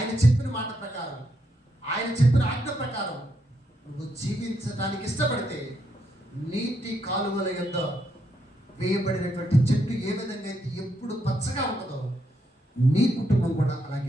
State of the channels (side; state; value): both; normal; correlation 0.78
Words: చెప్పిన మాట ప్రకారం, ఆయన చెప్పిన ఆజ్ఞ ప్రకారం నువ్వు జీవించడానికి ఇష్టపడితే నీటి కాలువల యొద్ద వేయబడినటువంటి చెట్టు ఏ విధంగా అయితే ఎప్పుడు పచ్చగా ఉంటుందో నీ కుటుంబం కూడా